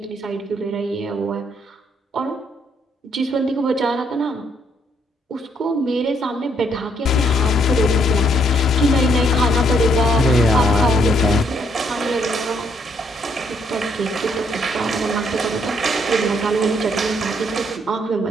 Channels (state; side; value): normal; both; correlation 0.70